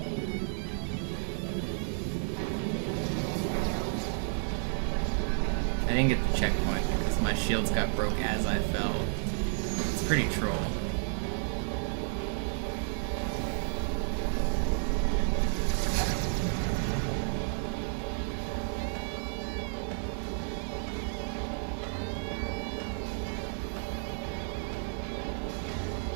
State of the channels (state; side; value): silent; left; 57 dB below the other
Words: I didn't get the checkpoint because my shields got broke as I fell. It's pretty troll.